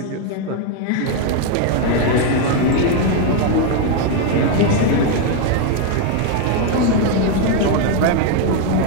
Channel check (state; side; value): different; both; correlation 0.01